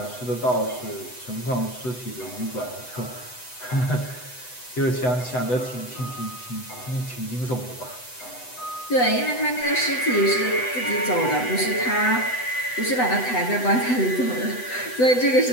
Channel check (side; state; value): right; late; 8.0 ms